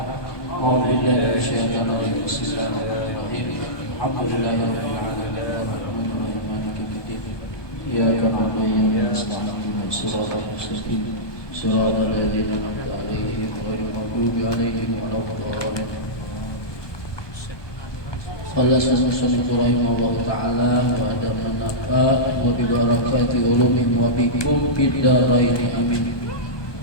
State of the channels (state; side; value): late; right; 1.2 ms